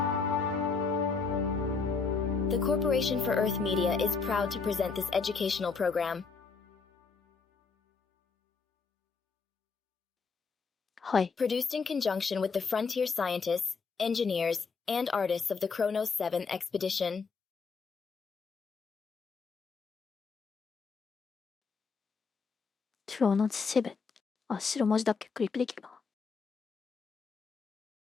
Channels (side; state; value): right; quieter; 5.0 dB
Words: The Corporation for Earth Media is proud to present this educational program. はい。Produced in conjunction with the frontier scientists, engineers, and artists of the Kronos 7 expedition. クロノスセブン。あ、白文字だっけクリックできるな。